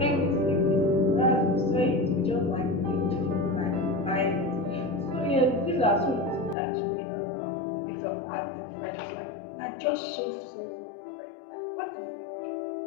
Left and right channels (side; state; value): right; drops out; at 6.6 s